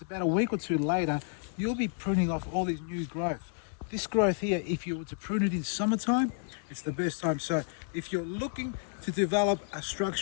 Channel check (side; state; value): right; silent; digital silence